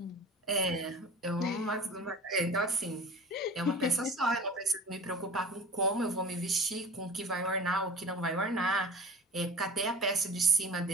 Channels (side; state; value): both; normal; correlation 0.38